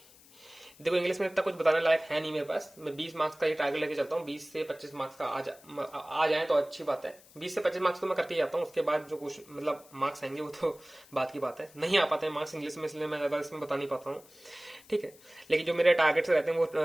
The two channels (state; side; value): noise; left; hiss, 24 dB below the sound